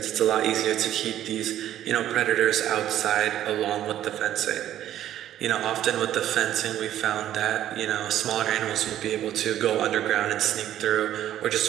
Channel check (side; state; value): left; quieter; 11.9 dB